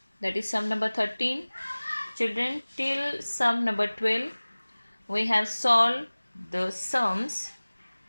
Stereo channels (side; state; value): both; inverted; correlation -1.00